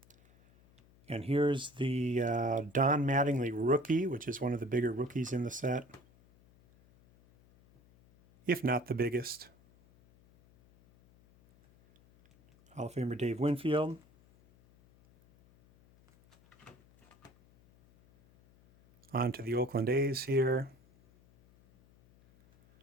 And here's the Don Mattingly rookie, which is one of the bigger rookies in the set, if not the biggest. Hall of Famer Dave Winfield. On to the Oakland A's here.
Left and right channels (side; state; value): left; noise; hum, 29 dB below the sound